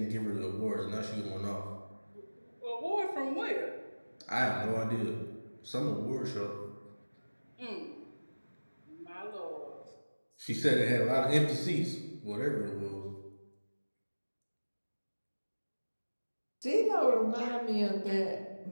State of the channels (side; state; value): both; inverted; correlation -1.00